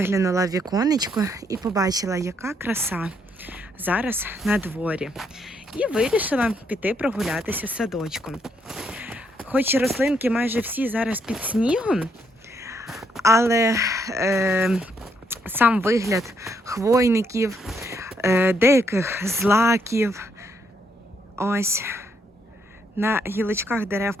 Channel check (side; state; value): both; normal; correlation 0.74